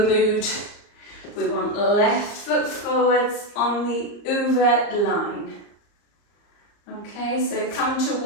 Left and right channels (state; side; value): late; right; 34 ms